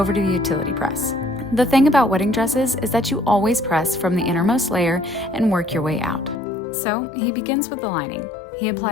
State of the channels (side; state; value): right; drops out; at 6.4 s